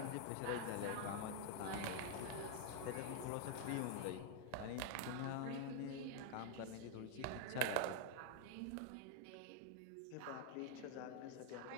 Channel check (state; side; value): different; both; correlation 0.00